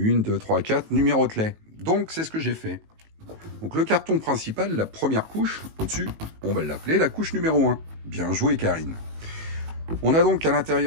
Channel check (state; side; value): late; left; 19 ms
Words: 2, 3, 4, numérote-les. Donc c'est ce que j'ai fait. Donc le carton principal, la première couche, au-dessus, on va l'appeler la couche numéro 1. Bien joué Karine. On a donc à